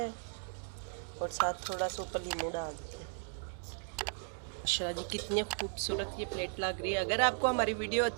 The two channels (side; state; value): left; silent; 54 dB below the other